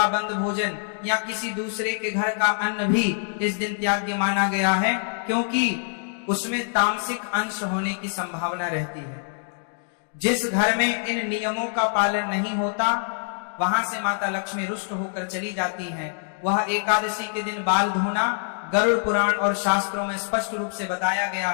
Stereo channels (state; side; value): silent; right; digital silence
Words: बंद भोजन या किसी दूसरे के घर का अन्न भी इस दिन त्याग्य माना गया है, क्योंकि उसमें तामसिक अंश होने की संभावना रहती है। जिस घर में इन नियमों का पालन नहीं होता, वहां से माता लक्ष्मी रुष्ट होकर चली जाती हैं। वह एकादशी के दिन बाल धोना गरुड़ पुराण और शास्त्रों में स्पष्ट रूप से बताया गया